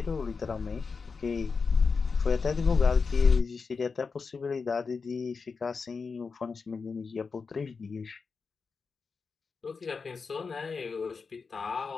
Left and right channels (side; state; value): right; quieter; 4.9 dB